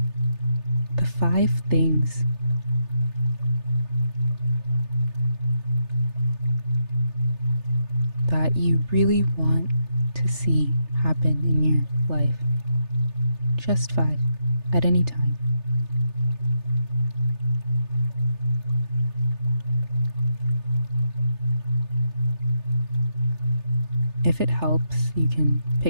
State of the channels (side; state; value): left; late; 3.3 ms